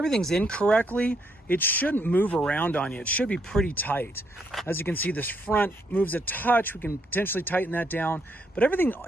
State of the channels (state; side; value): normal; both; correlation 0.74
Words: in correctly, it shouldn't move around on you. It should be pretty tight. As you can see, this front moves a touch. We can potentially tighten that down, but everything